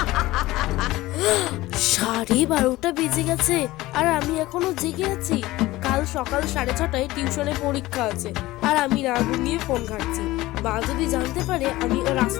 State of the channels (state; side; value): quieter; right; 18.1 dB